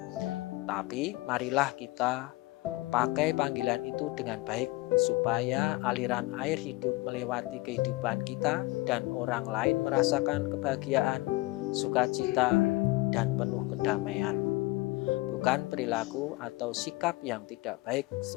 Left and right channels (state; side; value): quieter; right; 21.4 dB